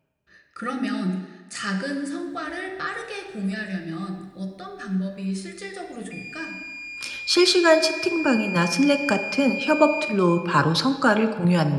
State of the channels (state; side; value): identical; both; correlation 1.00